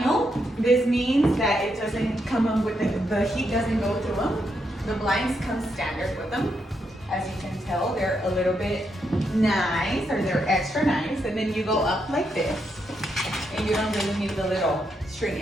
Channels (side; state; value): both; normal; correlation 0.80